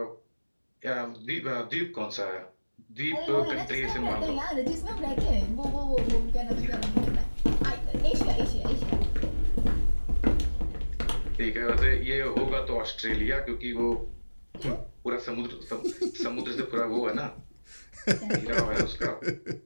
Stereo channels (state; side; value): inverted; both; correlation -1.00